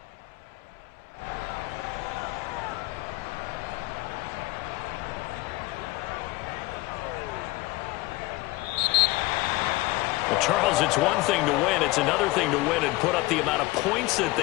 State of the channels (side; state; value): right; quieter; 19.8 dB